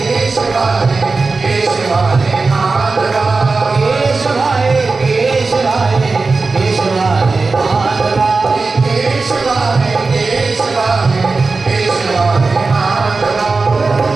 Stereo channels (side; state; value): left; quieter; 4.0 dB